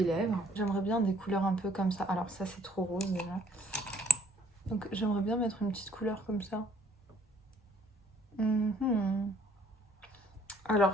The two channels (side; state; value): both; normal; correlation 0.62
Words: lèvres. J'aimerais bien des couleurs un peu comme ça. Alors ça, c'est trop rose déjà. Donc j'aimerais bien mettre une petite couleur comme ça.